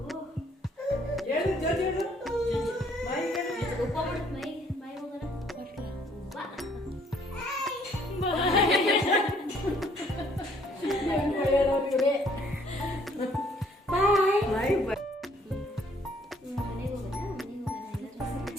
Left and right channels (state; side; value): normal; both; correlation 0.63